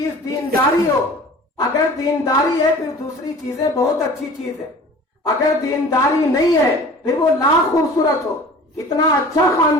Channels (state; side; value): normal; both; correlation 0.43